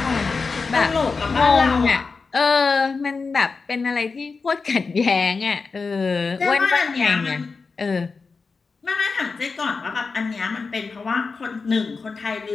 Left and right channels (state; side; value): quieter; right; 4.5 dB